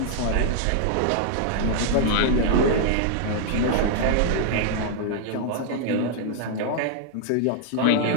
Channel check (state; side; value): different; both; correlation 0.00